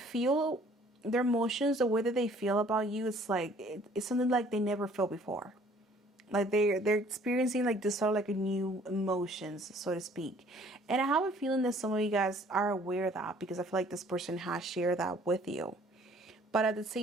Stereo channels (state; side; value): normal; both; correlation 0.57